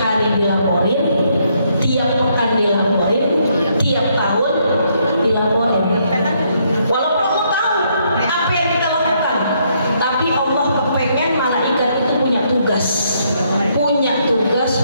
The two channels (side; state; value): both; inverted; correlation -0.72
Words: hari dilaporin, tiap pekan dilaporin, tiap tahun dilaporin. Walaupun Allah tahu apa yang kita lakukan, tapi Allah kepengen malaikat itu punya tugas